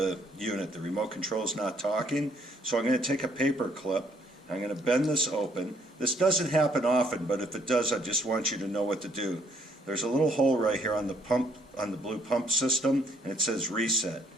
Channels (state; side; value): normal; both; correlation 0.67